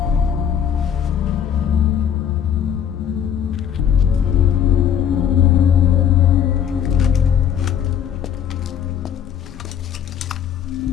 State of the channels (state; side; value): quieter; right; 8.9 dB